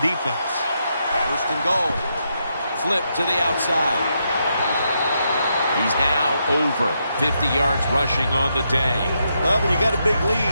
First and goal. Flip to the outside. He's now over 50 yards rushing on the day. Well, when you got a big lead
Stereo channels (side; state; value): both; inverted; correlation -0.81